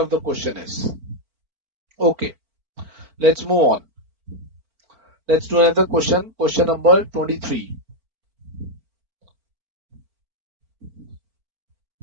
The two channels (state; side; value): late; left; 4.5 ms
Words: the question is. Okay. Let's move on. Let's do another question. Question number 23.